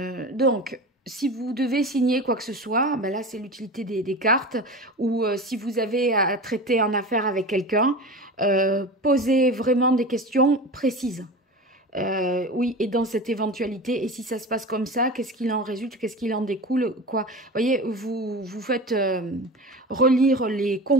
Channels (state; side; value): normal; both; correlation 0.30